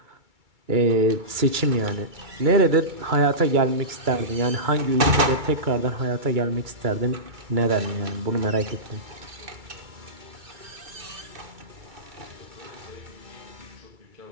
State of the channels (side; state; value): left; late; 2.3 ms